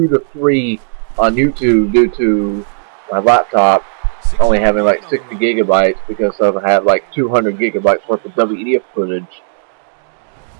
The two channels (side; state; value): left; silent; digital silence